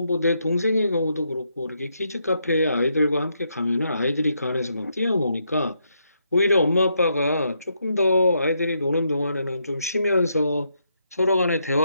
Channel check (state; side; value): inverted; both; correlation -0.78